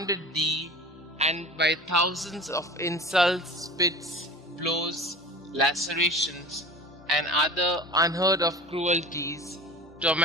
thee, and by thousands of insults, spits, blows, lacerations, and other unheard of cruelties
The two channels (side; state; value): both; normal; correlation 0.37